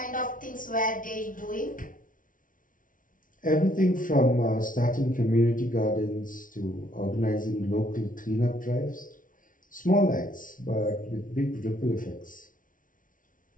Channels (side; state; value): right; late; 0.38 ms